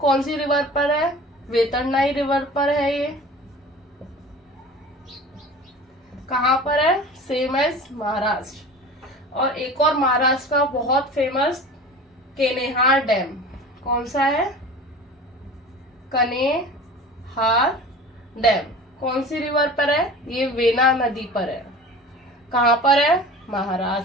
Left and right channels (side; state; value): both; normal; correlation 0.39